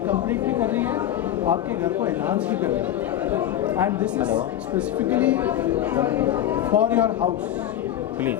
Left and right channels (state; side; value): quieter; right; 11.7 dB